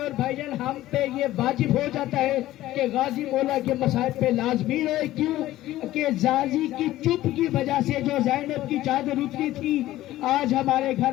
بھائی جان ہم پہ یہ واجب ہو جاتا ہے کہ غازی مولا کے مصائب پہ لازمی رہے، کیوں کہ غازی کی چپ کی وجہ سے جو زینب کی چادر اتری تھی، آج ہمارے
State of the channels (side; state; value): right; quieter; 15.2 dB